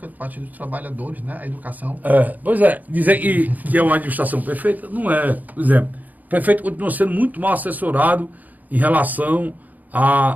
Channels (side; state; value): left; late; 0.081 ms